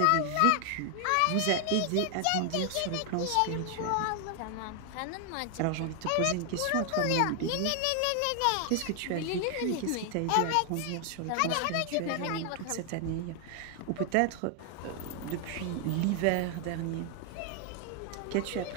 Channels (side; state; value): both; different; correlation 0.00